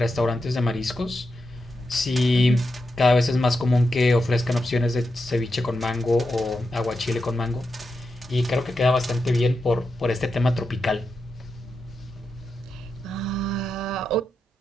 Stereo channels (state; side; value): normal; both; correlation 0.87